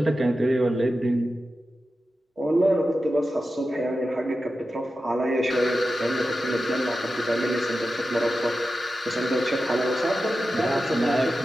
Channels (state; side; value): normal; both; correlation 0.92